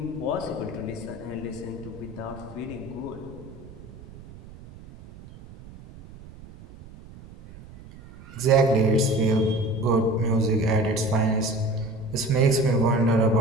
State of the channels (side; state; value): right; noise; rumble, 18 dB below the sound